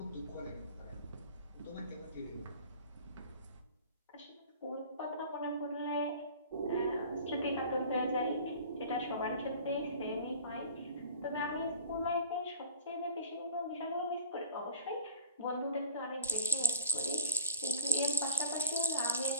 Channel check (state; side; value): inverted; both; correlation -0.47